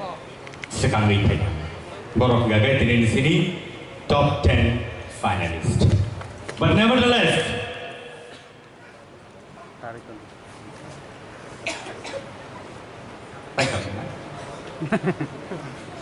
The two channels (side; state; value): both; identical; correlation 1.00